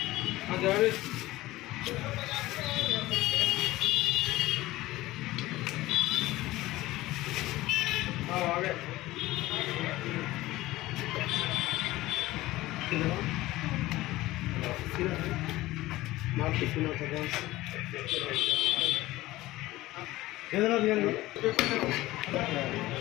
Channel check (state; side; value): quieter; right; 17.7 dB